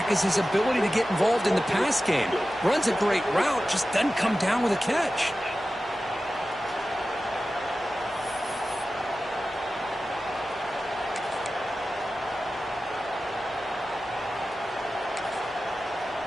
is his ability to get involved in the pass game. Runs a great route, just doesn't come down with a catch.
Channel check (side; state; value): both; normal; correlation 0.94